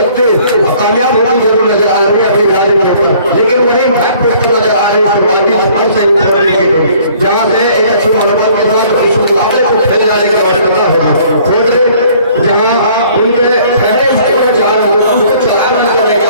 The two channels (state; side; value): inverted; both; correlation -0.57